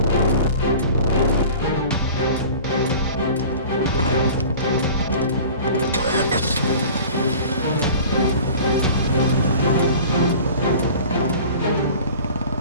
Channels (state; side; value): inverted; both; correlation -0.42